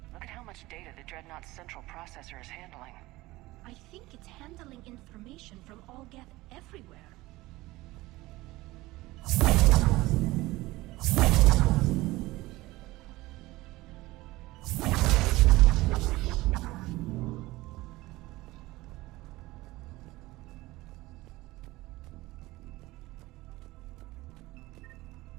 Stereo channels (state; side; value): quieter; left; 19.2 dB